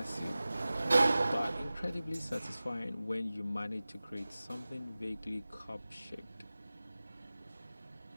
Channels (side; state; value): both; inverted; correlation -0.97